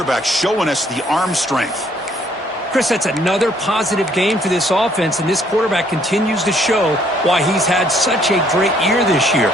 showing us the arm strength. Chris, that's another positive game for this offense, and this quarterback continues to show why he's had such a great year this year.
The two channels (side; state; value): both; normal; correlation 0.65